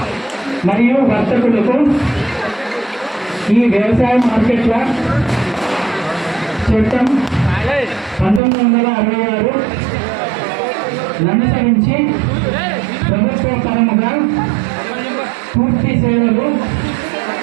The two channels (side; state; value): left; drops out; at 8.4 s